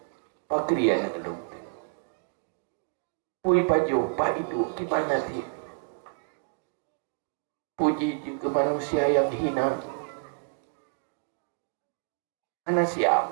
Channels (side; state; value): left; silent; digital silence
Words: pakri anak lu pui pajo pak itu gimana sih puji ke manusia yang hina anak siap